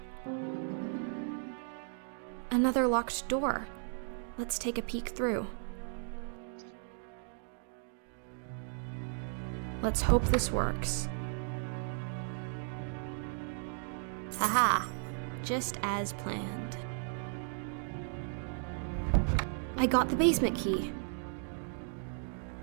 Another locked door. Let's take a peek through. Let's hope this works. Haha, just as planned. I got the basement key.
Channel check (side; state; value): left; silent; 54 dB below the other